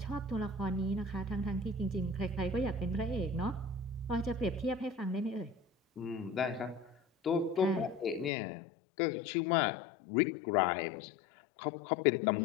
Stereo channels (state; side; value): drops out; right; at 8.3 s